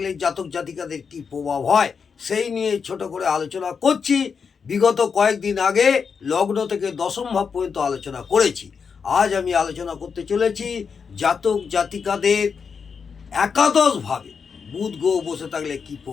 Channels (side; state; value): right; quieter; 6.0 dB